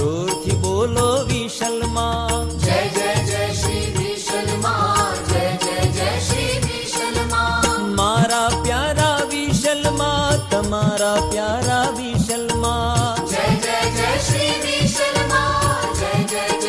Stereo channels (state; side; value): identical; both; correlation 1.00